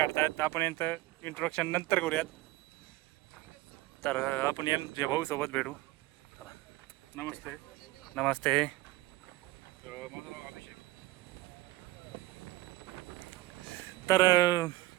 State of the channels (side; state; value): left; quieter; 18.3 dB